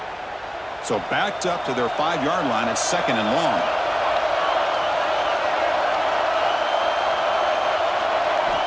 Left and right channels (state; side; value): identical; both; correlation 1.00